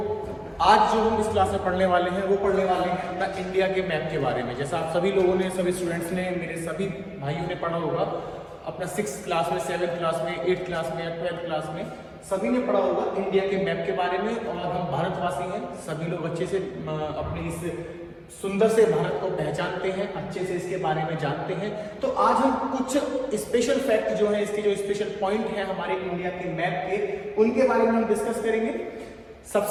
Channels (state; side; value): identical; both; correlation 1.00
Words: आज जो हम इस क्लास में पढ़ने वाले हैं वो पढ़ने वाले हैं अपना इंडिया के मैप के बारे में। जैसा आप सभी लोगों ने, सभी स्टूडेंट्स ने, मेरे सभी भाइयों ने पढ़ा होगा अपना 6th क्लास में, 7th क्लास में, 8th क्लास में या 12th क्लास में, सभी ने पढ़ा होगा इंडिया के मैप के बारे में। और हम भारतवासी हैं, सभी लोग अच्छे से अपने इस सुंदर से भारत को पहचानते हैं, अच्छे से इसके बारे में जानते हैं। तो आज हम कुछ स्पेशल फैक्ट जो है, इसके जो स्पेशल पॉइंट हैं हमारे इंडिया के मैप के, उनके बारे में हम डिस्कस करेंगे।